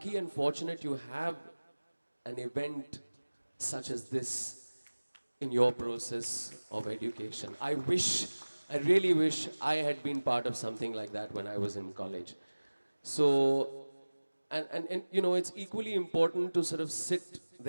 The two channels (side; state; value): both; inverted; correlation -1.00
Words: and fortunate you have an event such as this in your process of education. I really wish I had been part of something like that when I was in college. So, And you know, it's equally important to sort of sit